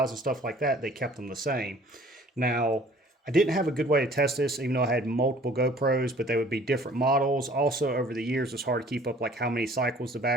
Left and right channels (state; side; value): normal; both; correlation 0.53